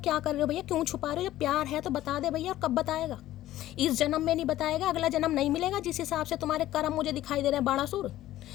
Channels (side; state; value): right; quieter; 14.3 dB